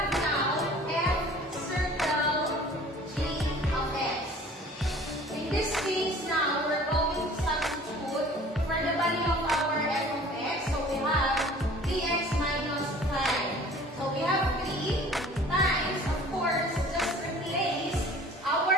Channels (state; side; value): normal; both; correlation 0.47